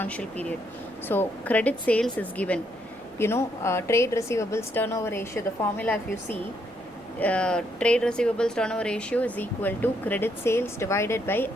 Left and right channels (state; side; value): noise; left; rumble, 28 dB below the sound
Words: period. So credit sales is given, trade receivables turnover ratio, the formula if you see, trade receivables turnover ratio is equal to credit sales divided by